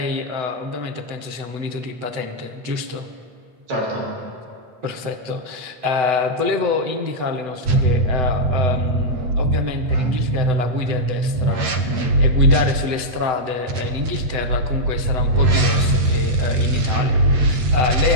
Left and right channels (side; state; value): left; late; 7.9 ms